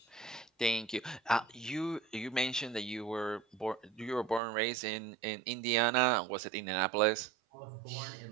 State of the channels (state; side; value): drops out; left; at 4.4 s